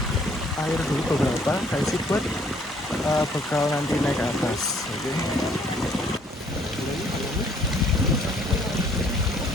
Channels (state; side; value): normal; both; correlation 0.62